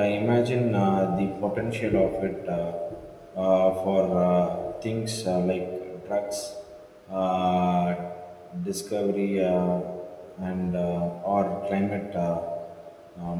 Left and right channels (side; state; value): both; identical; correlation 1.00